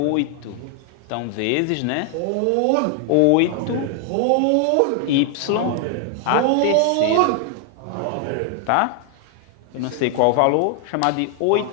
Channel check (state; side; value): different; both; correlation 0.00